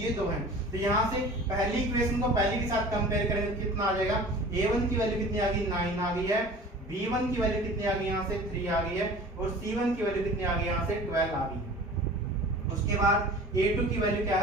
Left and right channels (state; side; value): normal; both; correlation 0.42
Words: दो हैं। तो यहाँ से पहली इक्वेशन को पहली के साथ कंपेयर करेंगे तो कितना आ जाएगा, A1 की वैल्यू कितनी आ गई, 9 आ गई है, B1 की वैल्यू कितनी आ गई, यहाँ से 3 आ गई है, और C1 की वैल्यू कितनी आ गई, यहाँ से 12 आ गई है। उसके बाद A2 की वैल्यू क्या